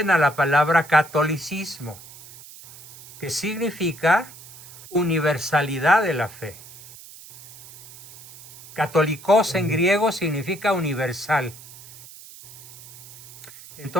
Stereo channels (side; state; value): right; noise; hiss, 19 dB below the sound